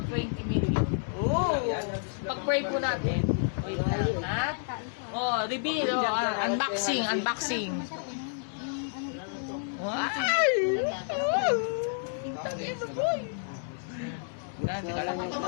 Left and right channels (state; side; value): silent; right; 58 dB below the other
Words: 20 million. Oh! Pag-pray po natin. Ha? Oh, reveal. Unboxing.